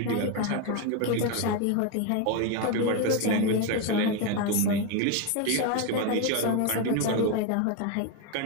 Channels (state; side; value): different; both; correlation 0.02